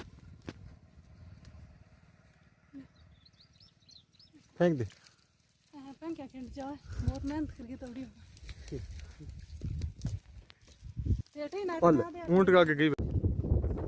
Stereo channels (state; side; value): identical; both; correlation 1.00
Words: फेंक दे। क्या खिंड जाए, बहुत मेहनत करके तोड़ी ऊंट का के गई।